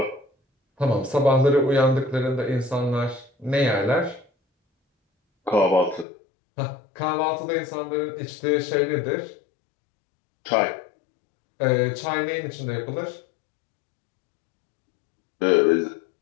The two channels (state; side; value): drops out; right; at 6.1 s